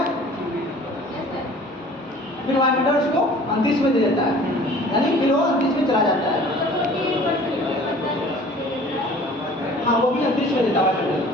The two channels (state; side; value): normal; both; correlation 0.48